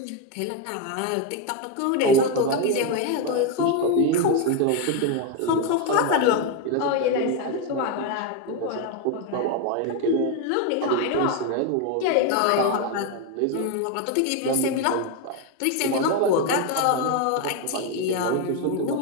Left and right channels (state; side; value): different; both; correlation 0.02